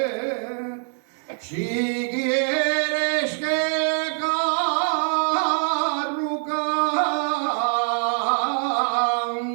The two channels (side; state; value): left; silent; 56 dB below the other